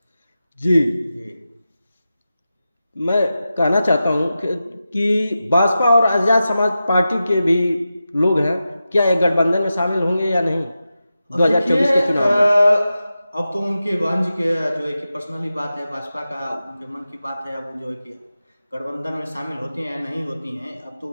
जी, मैं कहना चाहता हूं कि भाजपा और आजाद समाज पार्टी के भी लोग हैं, क्या एक गठबंधन में शामिल होंगे या नहीं 2024 के चुनाव में? अब तो उनके बहन जी के जो है कि पर्सनली बात है, भाजपा का उनके मन की बात है। अब जो है कि गठबंधन में शामिल होती हैं या नहीं होती हैं, अब तो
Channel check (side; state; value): both; inverted; correlation -0.92